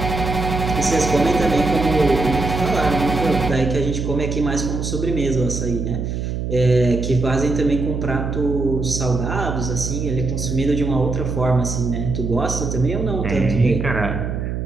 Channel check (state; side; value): noise; right; hum, 3 dB below the sound